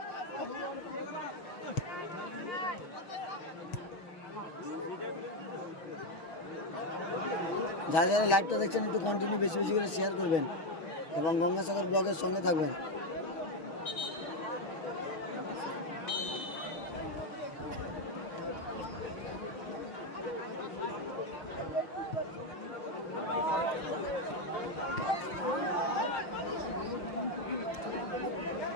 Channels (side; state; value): right; late; 6.2 ms